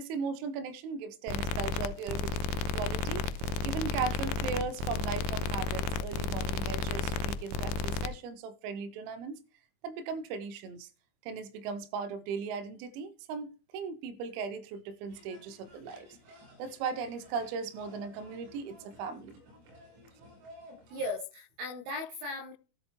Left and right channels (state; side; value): late; left; 25 ms